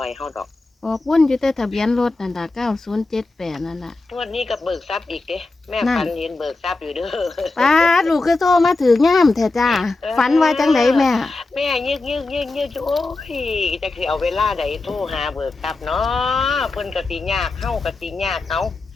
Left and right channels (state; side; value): quieter; right; 3.4 dB